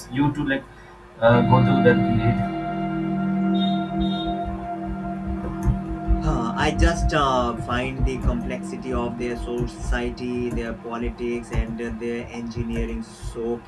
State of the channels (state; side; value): identical; both; correlation 1.00